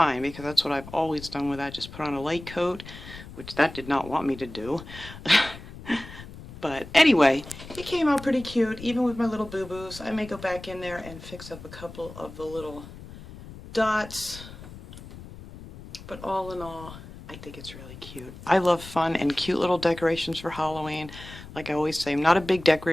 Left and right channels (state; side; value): noise; left; rumble, 15 dB below the sound